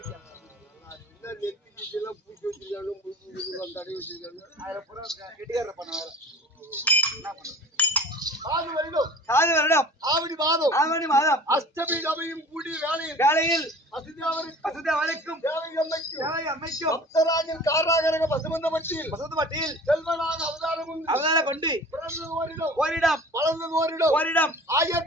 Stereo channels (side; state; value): both; normal; correlation 0.43